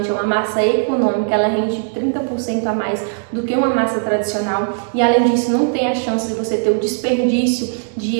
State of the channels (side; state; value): left; silent; digital silence